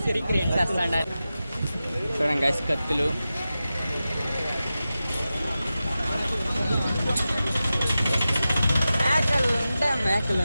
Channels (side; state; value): both; inverted; correlation -0.93